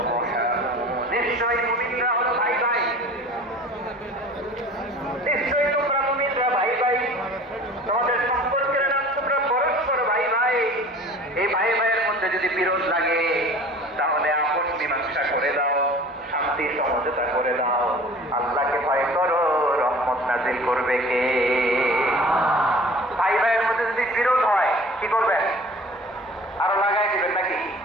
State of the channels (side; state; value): both; normal; correlation 0.44